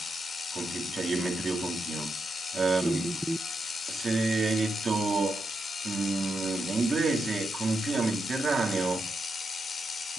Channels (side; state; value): both; normal; correlation 0.84